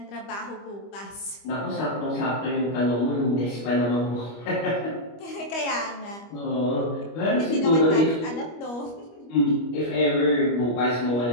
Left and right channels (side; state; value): right; late; 25 ms